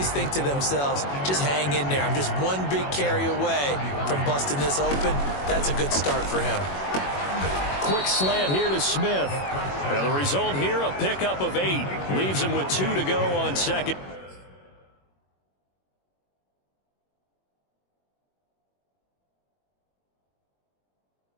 think to themselves, just hang in there. I'm just one big carry away from busting this open. That's a good start for him. Quick slant here to Smith. And the result here, a pickup of 8. Leaves him with 2 to go on second.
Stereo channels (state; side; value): late; right; 21 ms